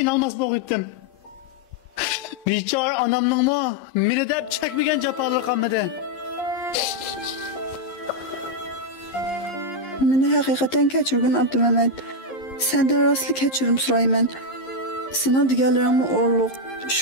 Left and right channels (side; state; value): right; late; 11 ms